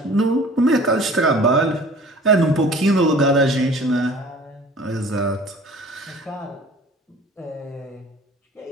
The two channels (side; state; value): both; normal; correlation 0.47